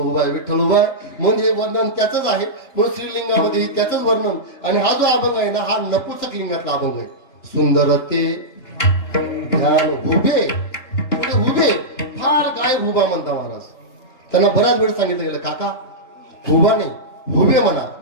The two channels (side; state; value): right; late; 3.0 ms